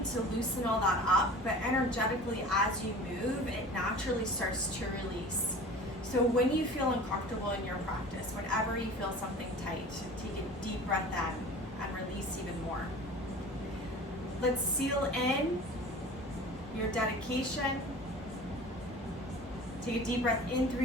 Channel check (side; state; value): both; normal; correlation 0.40